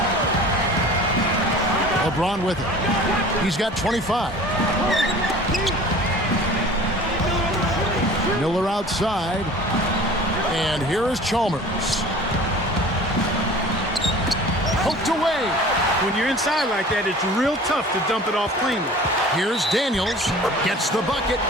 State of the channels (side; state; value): both; normal; correlation 0.43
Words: LeBron with it. He's got 25. Miller outside. And here is Chalmers. Poked away. When you're inside like that, it's real tough to dump it off cleanly. Here's Daniels. Gets the bucket